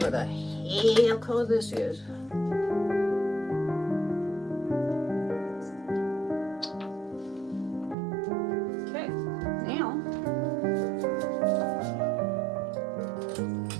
the hell color this is. Okay, now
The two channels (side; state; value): left; drops out; at 8.0 s